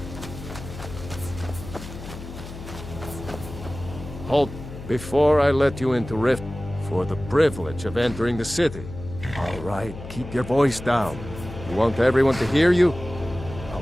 Halt before I let you into Rift for the privilege of entering the city. All right, keep your voice down. You want everyone to hear you?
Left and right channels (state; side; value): noise; left; hum, 12 dB below the sound